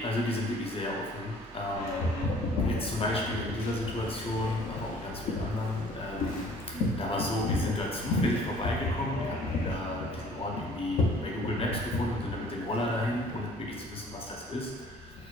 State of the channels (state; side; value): normal; both; correlation 0.53